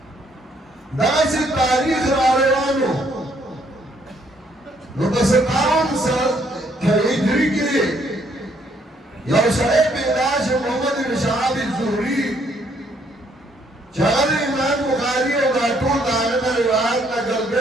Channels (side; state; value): both; normal; correlation 0.68